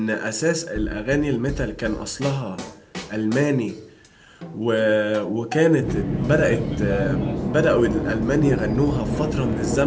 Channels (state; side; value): identical; both; correlation 1.00